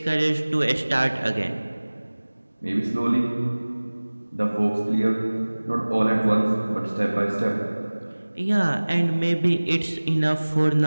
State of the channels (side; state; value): both; inverted; correlation -1.00